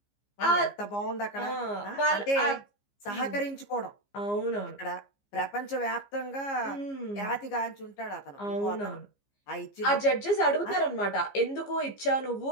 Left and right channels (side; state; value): right; late; 15 ms